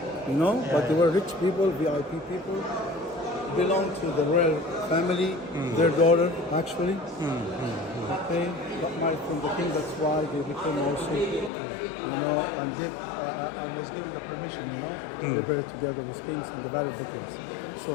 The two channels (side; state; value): right; drops out; at 11.5 s